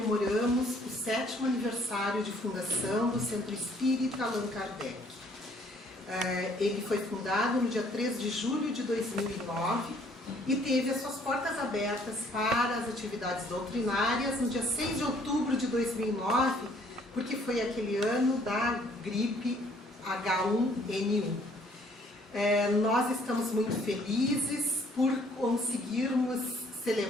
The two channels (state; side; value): normal; both; correlation 0.61